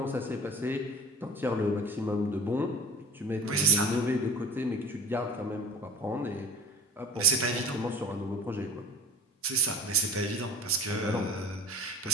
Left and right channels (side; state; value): both; normal; correlation 0.39